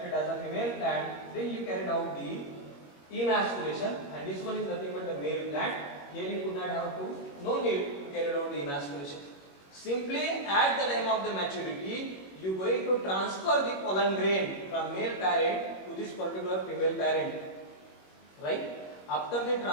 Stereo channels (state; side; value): late; right; 21 ms